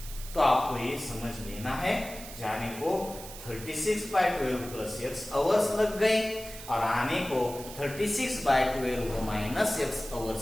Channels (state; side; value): noise; right; hiss, 13 dB below the sound